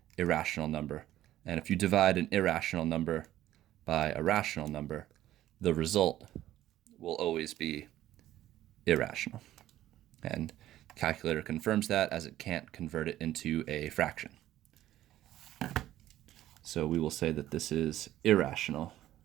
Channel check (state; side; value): quieter; left; 13.6 dB